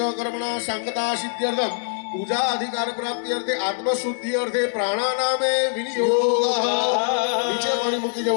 કર્મણા સંગતા સિદ્ધ્યર્થમ પૂજા અધિકાર પ્રાપ્તિ અર્થે આત્મશુદ્ધિ અર્થે પ્રાણાનામે વિનિયોગ. નીચે પાણી મૂકી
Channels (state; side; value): silent; right; digital silence